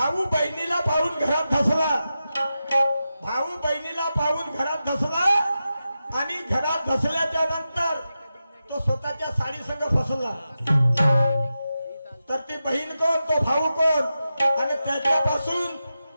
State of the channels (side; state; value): both; inverted; correlation -0.91